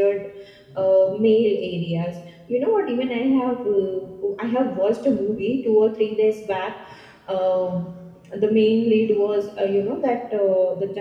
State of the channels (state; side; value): identical; both; correlation 1.00